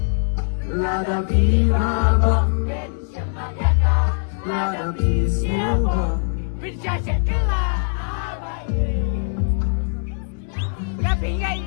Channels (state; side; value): silent; right; digital silence